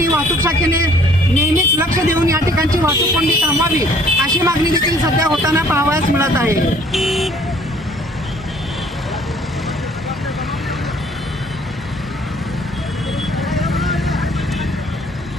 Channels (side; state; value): both; normal; correlation 0.58